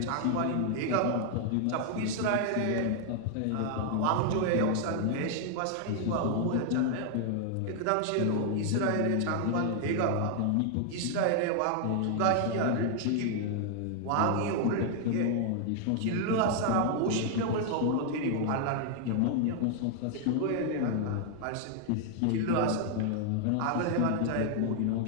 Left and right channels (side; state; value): both; different; correlation 0.00